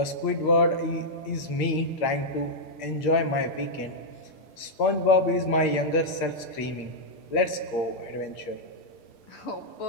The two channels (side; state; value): right; late; 6.7 ms